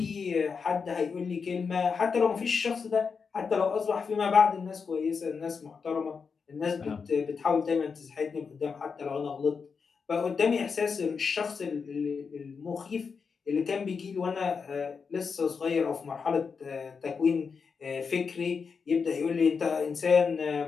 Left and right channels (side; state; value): right; quieter; 5.5 dB